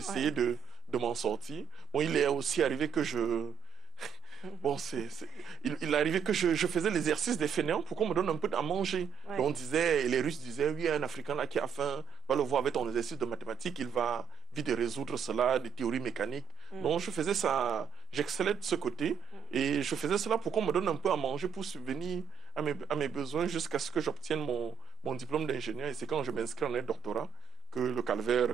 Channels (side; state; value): left; quieter; 9.0 dB